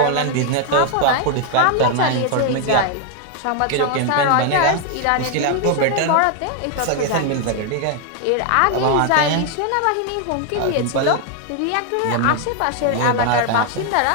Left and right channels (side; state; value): both; different; correlation 0.00